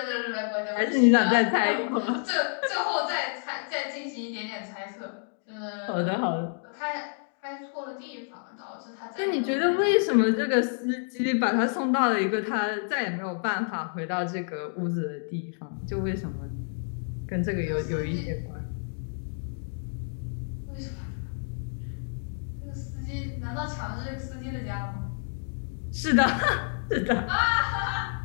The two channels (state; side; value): silent; right; 59 dB below the other